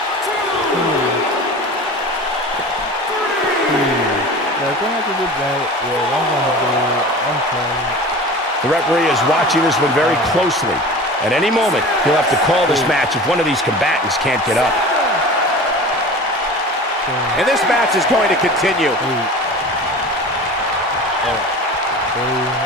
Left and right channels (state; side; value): normal; both; correlation 0.36